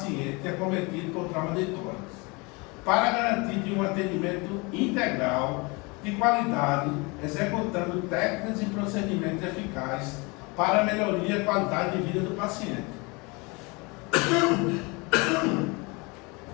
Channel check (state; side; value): quieter; right; 27.7 dB